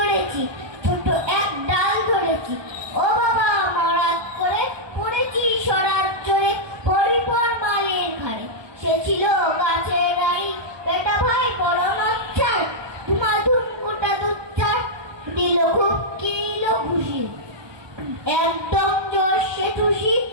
ছোট এক ডাল ধরেছি, ও বাবা মরাত করে পড়েছি সরার চড়ে, পরিপর মালের ঘাড়ে, সে ছিল গাছের রানী, বেটা ভাই বড় নচ্ছার, ধুমাধুম গোটা দুচ্চার, দিল খুব কিল ঘুষি, একদম জোরসে ঠুসি,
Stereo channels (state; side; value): late; left; 1.2 ms